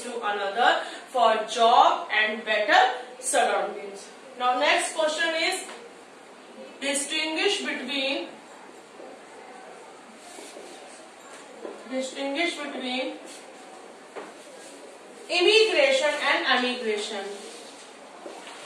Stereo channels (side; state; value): both; identical; correlation 1.00